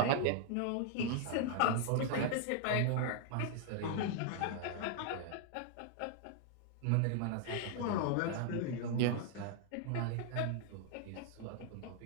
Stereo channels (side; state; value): both; different; correlation 0.00